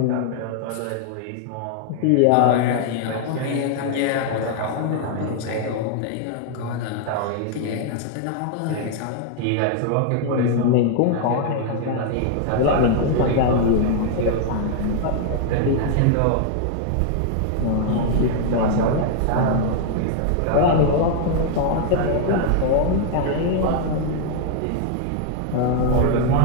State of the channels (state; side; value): different; both; correlation 0.00